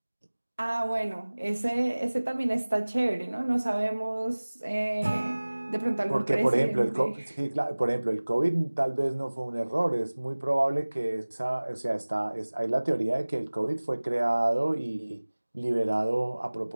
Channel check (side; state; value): both; inverted; correlation -1.00